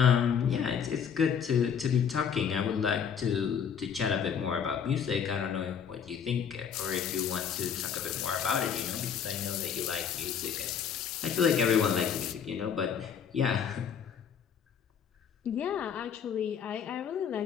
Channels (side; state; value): right; quieter; 7.6 dB